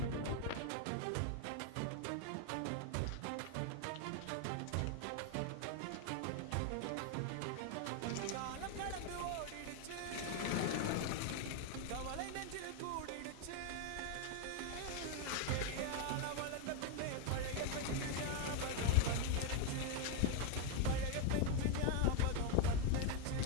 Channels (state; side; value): different; both; correlation 0.01